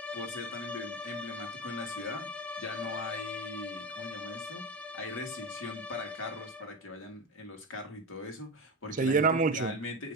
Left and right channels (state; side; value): normal; both; correlation 0.21